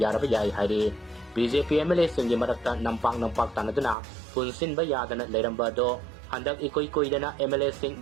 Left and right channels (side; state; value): left; drops out; at 4.0 s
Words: Yai Hairi BJP MLA Singi Marakta Nampak Tanaduna Punsin Bayadana Leirambado Handak ikoy-koy na MLA Sing